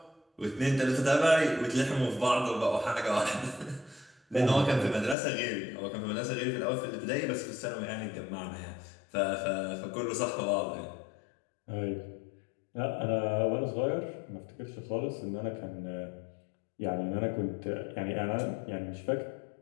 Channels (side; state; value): right; drops out; at 5.2 s